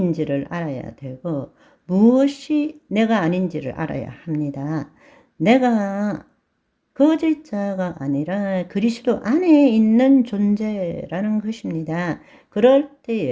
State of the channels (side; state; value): both; identical; correlation 1.00